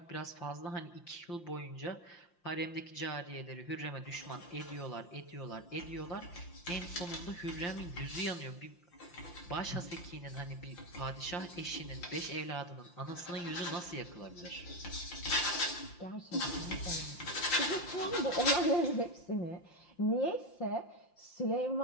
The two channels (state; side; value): late; right; 5.8 ms